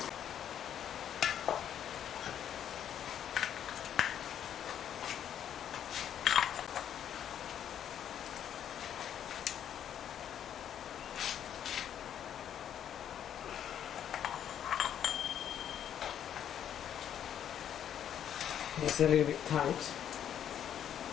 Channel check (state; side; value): quieter; right; 9.7 dB